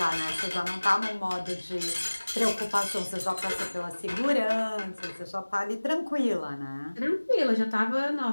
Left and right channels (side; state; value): both; inverted; correlation -1.00